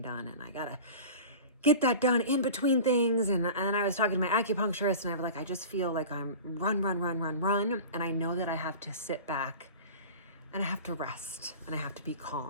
done, and I gotta get that done in between things. And I was talking to my acupuncturist, and I was like, I just feel like I'm run. And I know that I have to sit back and I have to rest and I have to be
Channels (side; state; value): both; inverted; correlation -0.35